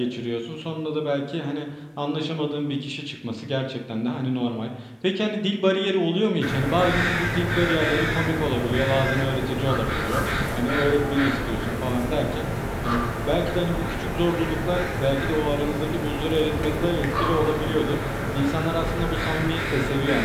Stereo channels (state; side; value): identical; both; correlation 1.00